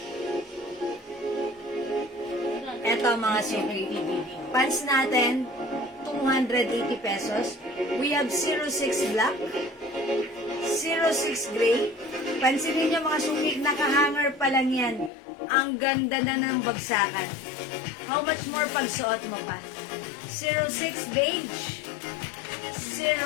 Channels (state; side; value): drops out; right; at 15.1 s